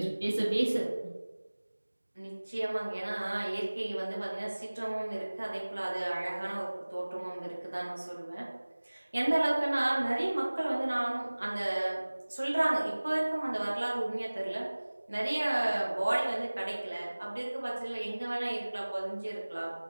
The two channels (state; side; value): inverted; both; correlation -1.00